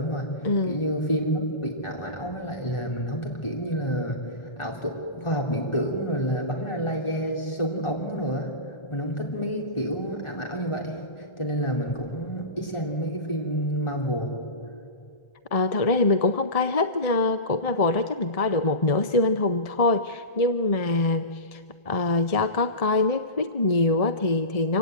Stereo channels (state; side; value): late; right; 1.7 ms